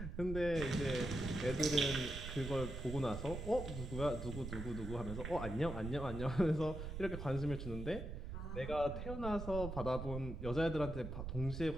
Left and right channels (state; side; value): noise; right; rumble, 6 dB below the sound